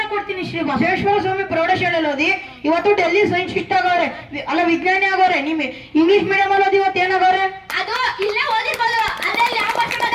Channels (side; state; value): both; identical; correlation 1.00